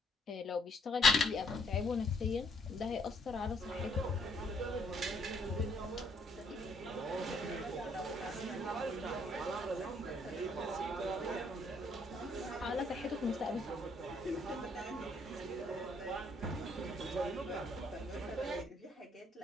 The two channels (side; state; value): both; normal; correlation 0.67